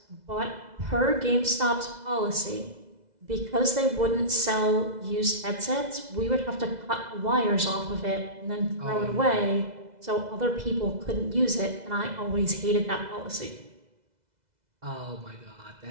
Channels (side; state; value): left; late; 2.0 ms